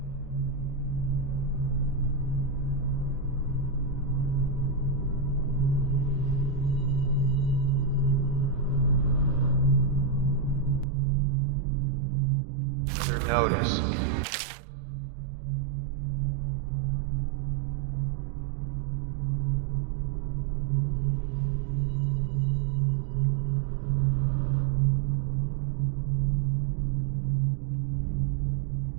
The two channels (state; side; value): drops out; left; at 10.9 s